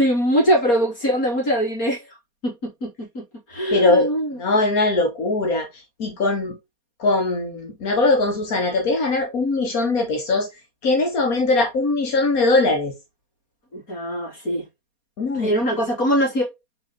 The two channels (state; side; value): late; right; 4.2 ms